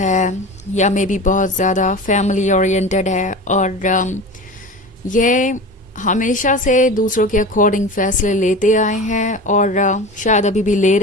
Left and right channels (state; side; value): normal; both; correlation 0.32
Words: या मे बी बहुत ज़्यादा फैमिली ओरिएंटेड है और ये हमेशा से दूसरों के अकॉर्डिंग फैसले लेते आए हैं और शायद अभी भी ले